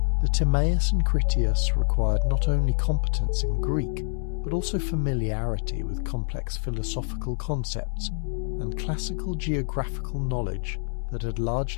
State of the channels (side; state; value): right; silent; 61 dB below the other